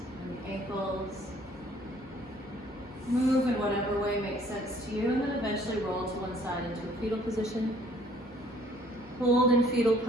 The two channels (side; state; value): both; normal; correlation 0.59